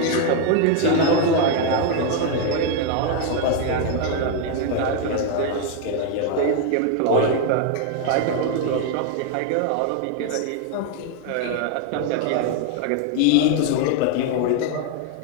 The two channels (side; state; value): both; different; correlation 0.01